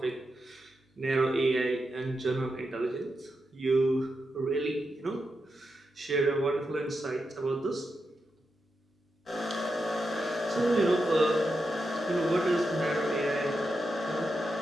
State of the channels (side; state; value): both; normal; correlation 0.87